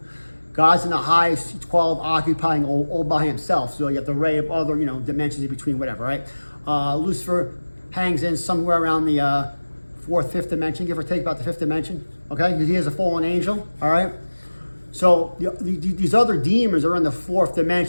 God's in the highest 12, occupying all by himself. So you have the array of other, dimensions in between, whatever, right? Lucifer hangs in somewhere around the fourth, fifth dimension, give or take about the fifth dimension, okay? He is a fallen angel, all right? So these other demons are in the fourth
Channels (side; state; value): both; inverted; correlation -1.00